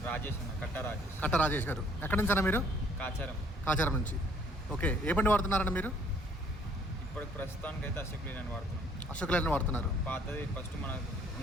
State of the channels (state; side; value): normal; both; correlation 0.61